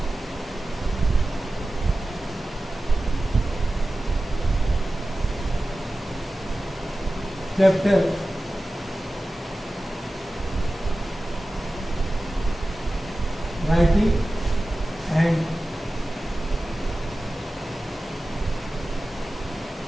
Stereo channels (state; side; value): normal; both; correlation 0.95